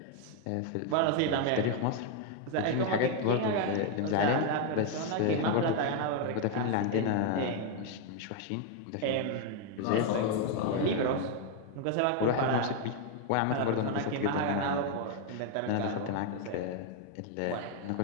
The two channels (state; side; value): different; both; correlation 0.01